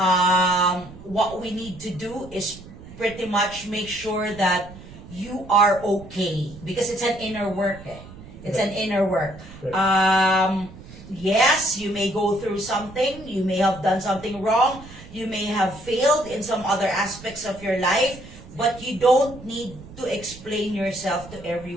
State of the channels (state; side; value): noise; right; rumble, 17 dB below the sound